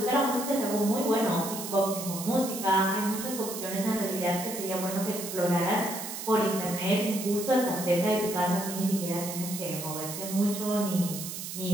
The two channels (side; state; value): right; noise; hiss, 7 dB below the sound